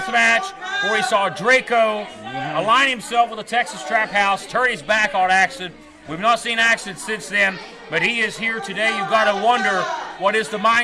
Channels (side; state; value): both; identical; correlation 1.00